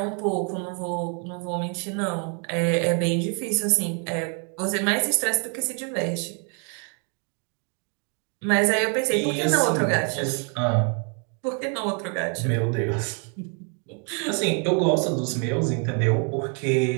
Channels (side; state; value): left; quieter; 39.5 dB